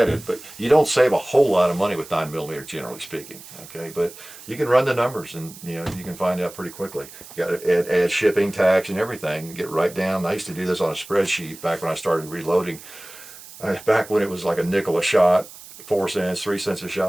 it, but you don't save a whole lot of money with 9mm, generally speaking. Okay, but you can run the numbers, and you know, you can find out pretty quickly. You got to add shipping, tax, and everything, and get right down. I used to do this on a spreadsheet back when I started reloading. Back when it was like a nickel a shot, 4 cents, 3 cents a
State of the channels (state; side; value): noise; right; hiss, 17 dB below the sound